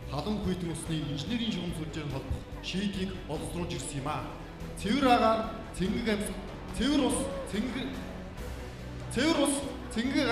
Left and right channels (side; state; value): both; identical; correlation 1.00